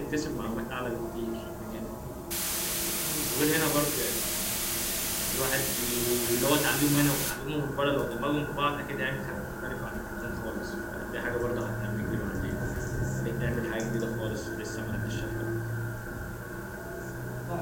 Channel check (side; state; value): both; identical; correlation 1.00